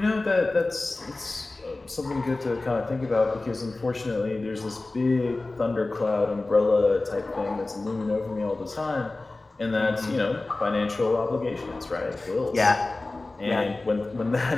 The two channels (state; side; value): quieter; right; 3.1 dB